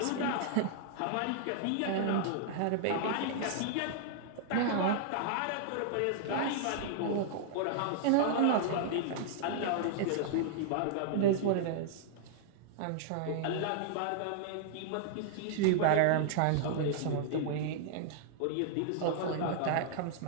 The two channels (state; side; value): different; both; correlation -0.01